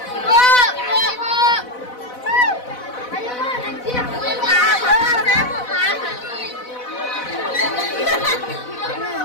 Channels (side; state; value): right; late; 4.0 ms